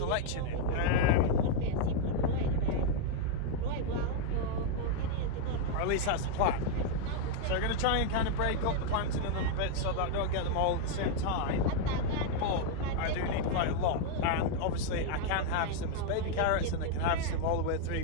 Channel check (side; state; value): both; different; correlation 0.00